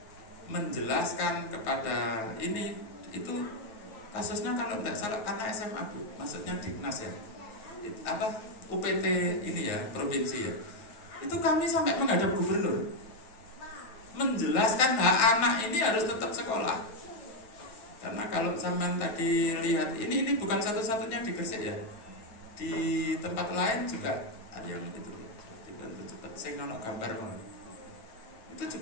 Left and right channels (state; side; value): late; right; 9.1 ms